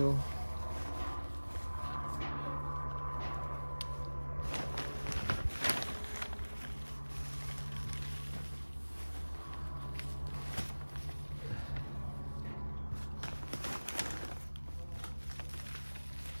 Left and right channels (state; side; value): inverted; both; correlation -1.00